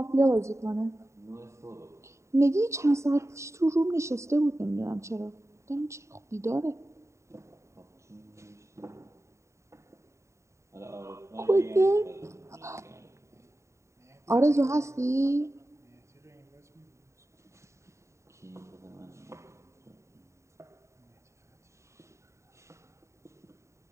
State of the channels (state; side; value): late; left; 0.14 ms